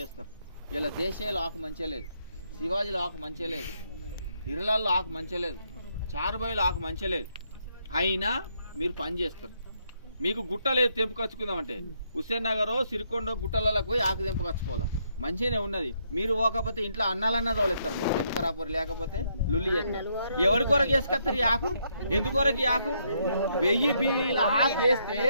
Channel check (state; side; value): inverted; both; correlation -0.75